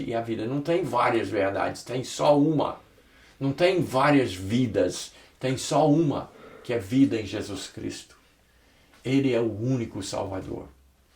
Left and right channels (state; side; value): identical; both; correlation 1.00